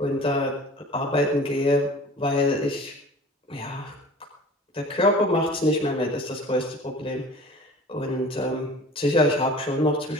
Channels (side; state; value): both; normal; correlation 0.43